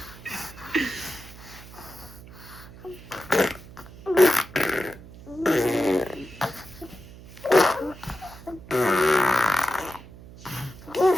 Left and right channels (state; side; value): noise; right; hum, 18 dB below the sound